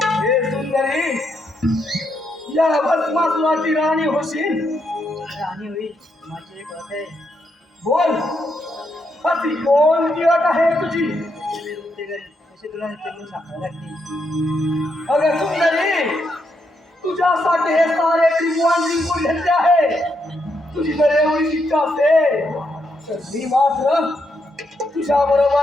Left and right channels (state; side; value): normal; both; correlation 0.79